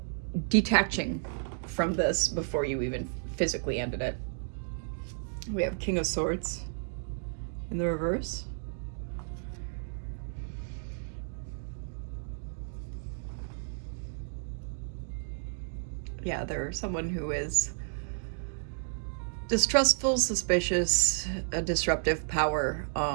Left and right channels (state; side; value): silent; left; digital silence